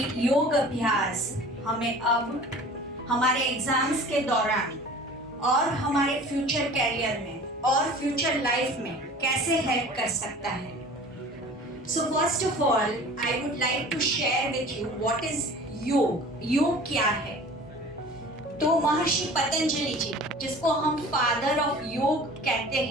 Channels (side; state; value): both; normal; correlation 0.43